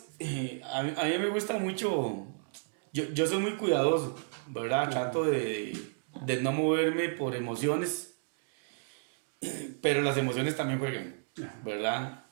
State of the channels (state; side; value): silent; left; digital silence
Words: a mí me gusta mucho, yo soy muy cuidadoso, ¿verdad? Trato de no moverme por emociones, pero las emociones también juegan, ¿verdad?